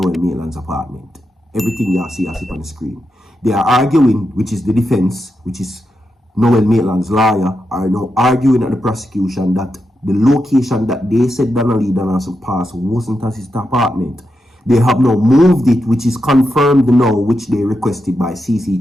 Maitland's apartment. Everything you see as it on the screen. They are arguing, which is the defense, which is Noel Maitland's lawyer, are now arguing at the prosecution that the location that they said Donna Donaldson passed wasn't at his apartment. They have now moved it, which is confirmed now, which they requested by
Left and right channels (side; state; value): both; normal; correlation 0.86